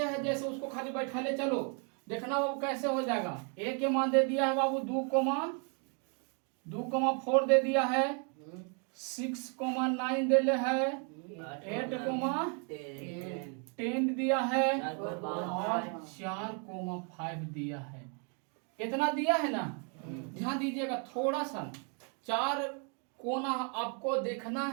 है जैसे उसको खाली बैठा ले चलो, देखना बाबू कैसे हो जाएगा। ए के मान दे दिया है बाबू 2,4 दे दिया है, 6,9 दे ले है, 8,10 दिया है और 4,5 दिया है। इतना दिया है ना? ध्यान दीजिएगा थोड़ा सा, 4 कोना आपको देखना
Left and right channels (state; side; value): quieter; left; 39.1 dB